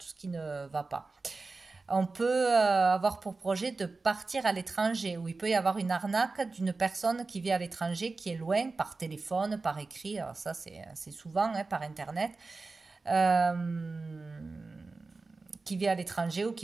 ce qui ne va pas. On peut avoir pour projet de partir à l'étranger, où il peut y avoir une arnaque d'une personne qui vit à l'étranger, qui est loin, par téléphone, par écrit, alors ça c'est souvent, hein, par internet, qui vit à l'étranger ou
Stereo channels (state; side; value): quieter; left; 3.8 dB